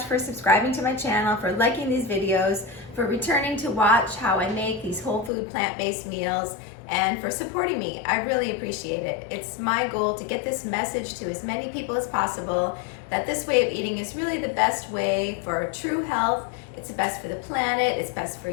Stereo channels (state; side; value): drops out; right; at 5.3 s